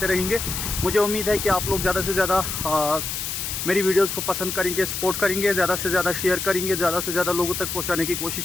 रहेंगे। मुझे उम्मीद है कि आप लोग ज़्यादा से ज़्यादा मेरी वीडियोस को पसंद करेंगे, सपोर्ट करेंगे, ज़्यादा से ज़्यादा शेयर करेंगे, ज़्यादा से ज़्यादा लोगों तक पहुंचाने की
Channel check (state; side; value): noise; left; hiss, 4 dB below the sound